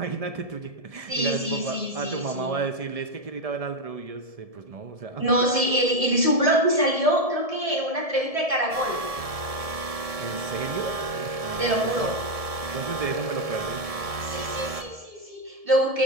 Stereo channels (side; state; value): left; late; 1.7 ms